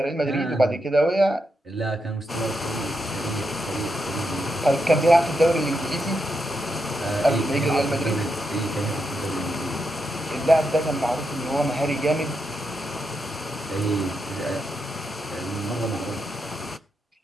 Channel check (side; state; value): both; normal; correlation 0.84